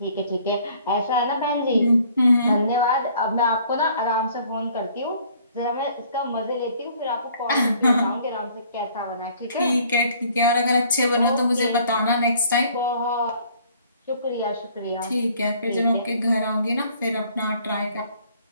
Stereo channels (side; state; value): both; inverted; correlation -0.58